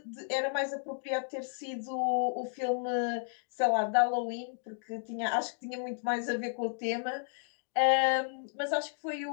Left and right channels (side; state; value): right; silent; digital silence